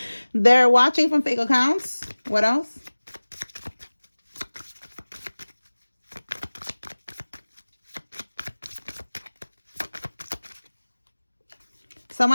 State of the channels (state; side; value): inverted; both; correlation -1.00